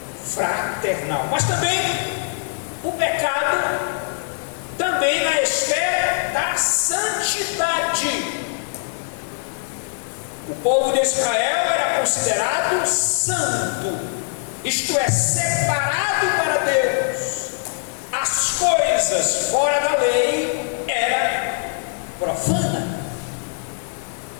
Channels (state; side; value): silent; right; digital silence